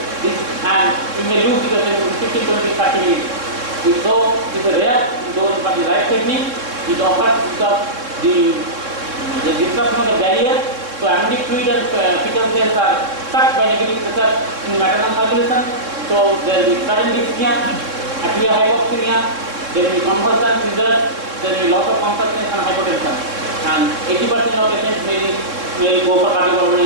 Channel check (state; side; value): late; left; 3.6 ms